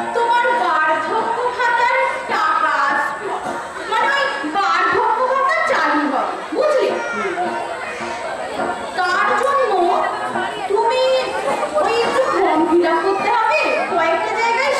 তোমার বার্ধক্য ভাতার টাকা আসবে, মানে ওই বার্ধক্য ভাতা চালু হবে, বুঝলে? তার জন্য তুমি ওই একটু ফর্ম ফিল আপ করতে হবে, কয়েকটা জায়গায়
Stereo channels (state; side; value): identical; both; correlation 1.00